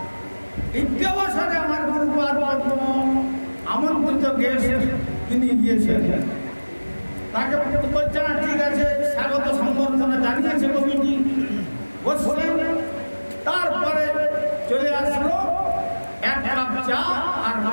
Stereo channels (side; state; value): both; inverted; correlation -1.00